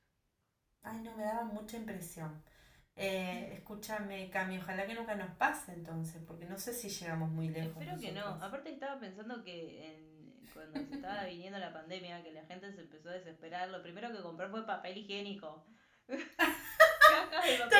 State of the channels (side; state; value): both; identical; correlation 1.00